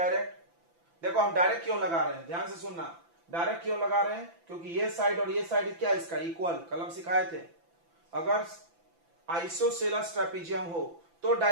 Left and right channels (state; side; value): late; left; 5.9 ms